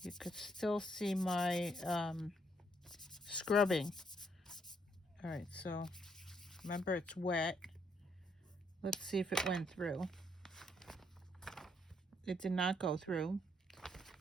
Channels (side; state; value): both; normal; correlation 0.72